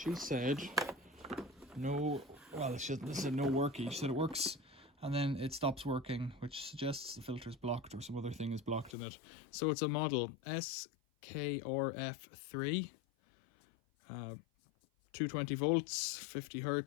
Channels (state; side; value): drops out; right; at 9.0 s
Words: said no, well, this is no worky. She said it works and then it stops working, which suggests the filter's blocked or some other thing is blocked in it. So it's a model SKRF3, 220 volts, 50